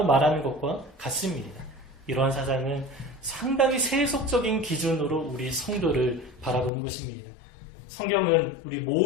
말하는 것과 같습니다. 이러한 사상은 상당히 세속적인 기준으로 우리 성도를 바라보는 것입니다. 성경은 우리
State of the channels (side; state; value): right; drops out; at 6.7 s